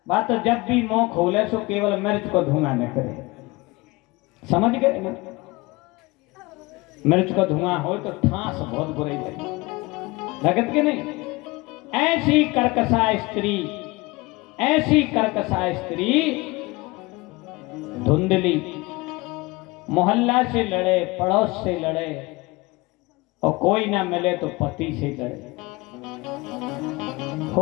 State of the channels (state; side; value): quieter; right; 23.1 dB